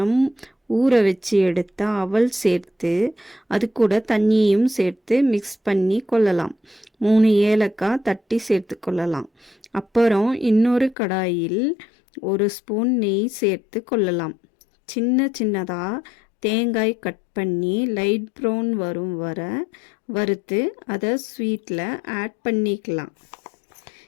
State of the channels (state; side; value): drops out; right; at 11.0 s